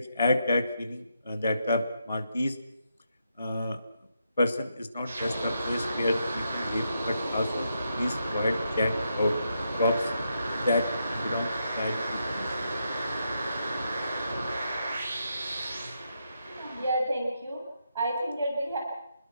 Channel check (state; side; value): inverted; both; correlation -0.81